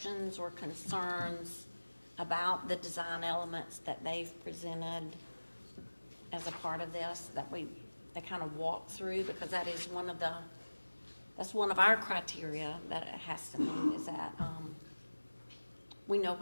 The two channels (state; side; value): inverted; both; correlation -1.00